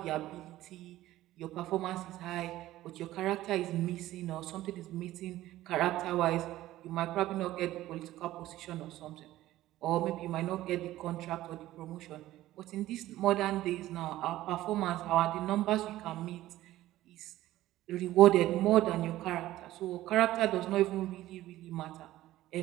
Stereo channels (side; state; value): left; quieter; 15.2 dB